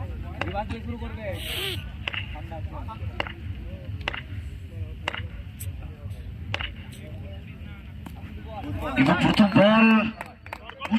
এবং প্রথম বল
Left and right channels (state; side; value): identical; both; correlation 1.00